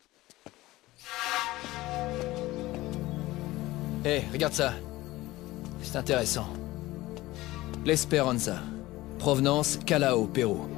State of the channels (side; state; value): right; quieter; 18.2 dB